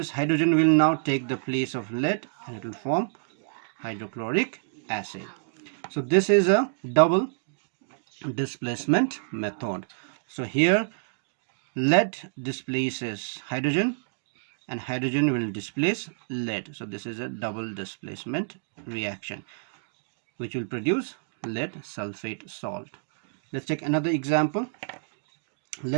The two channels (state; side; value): silent; left; digital silence